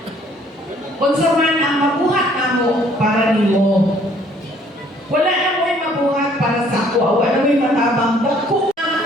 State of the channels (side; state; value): both; normal; correlation 0.60